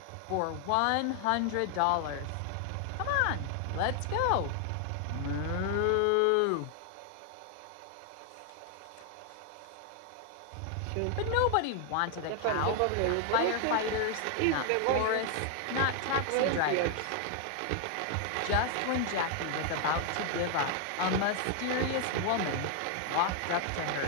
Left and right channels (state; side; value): different; both; correlation 0.00